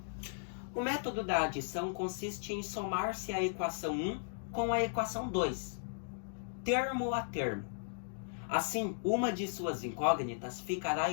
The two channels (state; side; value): silent; right; digital silence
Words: O método da adição consiste em somar-se a equação 1 com a equação 2, termo a termo. Assim, uma de suas incógnitas ficará